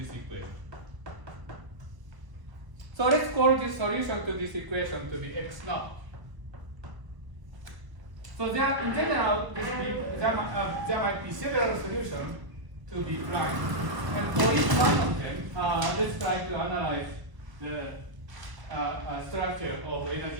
equation. So let's call this solution to this equation to be x naught. So there, in general, there might be several solutions to be prime. And for each one of them, let's try to analyze the structure of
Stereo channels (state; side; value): late; left; 1.0 ms